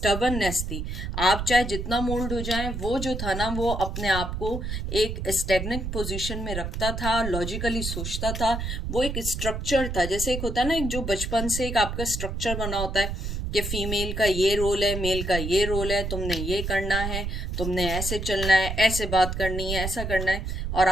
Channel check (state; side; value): noise; right; rumble, 4 dB below the sound